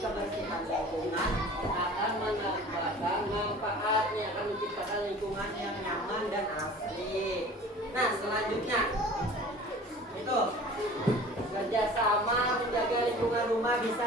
kebersihan lingkungan akan mendapatkan manfaatnya, akan menciptakan lingkungan yang nyaman dan asri. Nah, selanjutnya itu kerjasama menjaga lingkungan rumah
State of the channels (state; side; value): normal; both; correlation 0.43